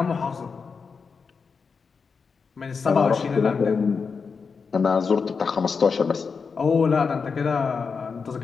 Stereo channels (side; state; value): right; quieter; 5.3 dB